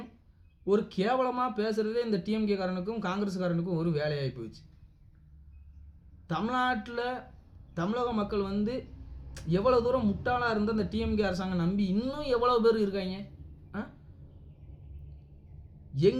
ஒரு கேவலமாக பேசுகிறதே இந்த டிஎம்கே காரனுக்கும் காங்கிரஸ்காரனுக்கும் ஒரு வேலையாகி போயிடுச்சு. தமிழ்நாட்டில் தமிழக மக்கள் எவ்வளோ தூரம் முட்டாளாக இருந்தால் அந்த டிஎம்கே அரசாங்கம் நம்பி இன்னும் எவ்வளோ பேர் இருக்காங்க.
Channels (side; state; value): both; identical; correlation 1.00